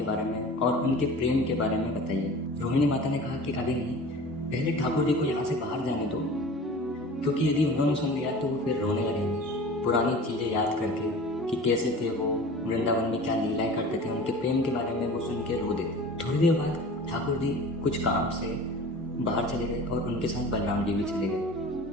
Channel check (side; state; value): both; normal; correlation 0.39